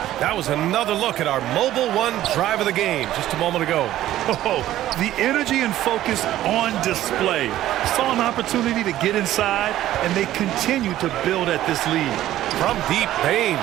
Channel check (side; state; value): left; quieter; 13.6 dB